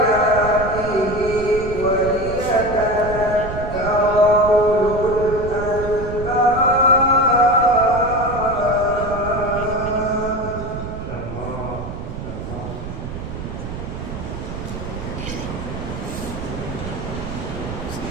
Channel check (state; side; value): noise; right; rumble, 8 dB below the sound